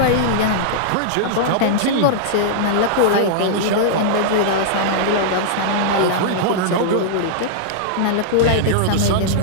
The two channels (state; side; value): different; both; correlation -0.02